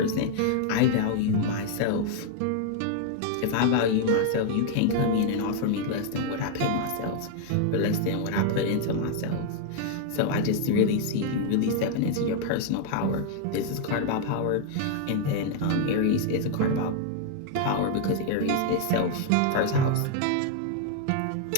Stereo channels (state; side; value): different; both; correlation 0.00